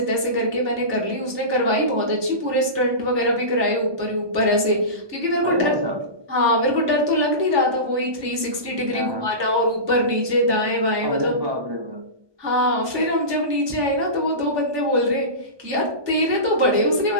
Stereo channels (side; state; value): left; late; 1.2 ms